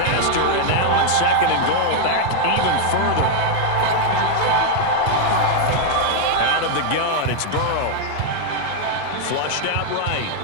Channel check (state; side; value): different; both; correlation 0.00